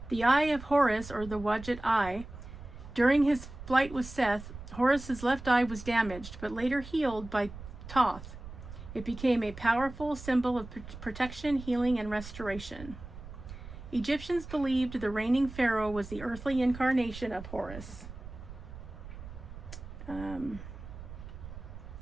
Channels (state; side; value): noise; right; rumble, 13 dB below the sound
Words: The eye of Horus, or the Wadjet eye, during his flight with Seth, Horus's left eye was damaged, but later healed by Thoth. It became a powerful symbol of protection, healing, and restoration. Egyptians believed the reigning pharaoh was the earthly incarnation of Horus.